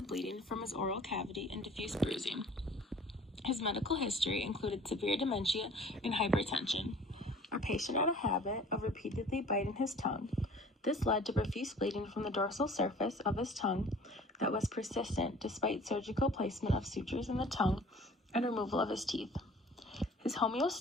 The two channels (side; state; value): both; normal; correlation 0.49